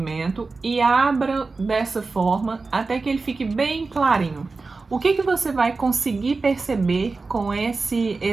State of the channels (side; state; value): left; quieter; 3.9 dB